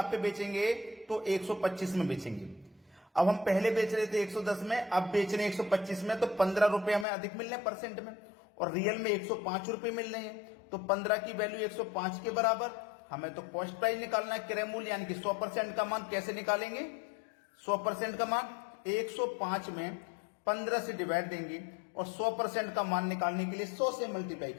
पे बेचेंगे तो 125 में बेचेंगे। अब हम पहले बेच रहे थे 110 में, अब बेच रहे हैं 125 में, तो 15 रुपए हमें अधिक मिल रहे हैं परसेंट में, और रियल में 105 रुपए मिल रहे हैं। तो 15 की वैल्यू 105 के बराबर। हमें तो कॉस्ट प्राइस निकालना है, क्रय मूल्य यानी कि 100% का मान। कैसे निकालेंगे 100% का मान? 105 में 15 से डिवाइड देंगे और 100% का मान निकालने के लिए 100 से मल्टीप्लाई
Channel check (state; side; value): drops out; right; at 7.1 s